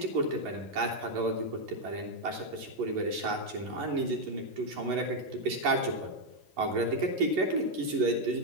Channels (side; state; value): left; late; 11 ms